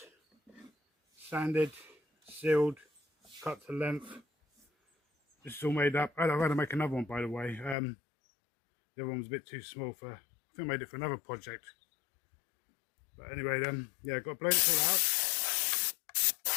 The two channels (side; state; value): right; drops out; at 7.8 s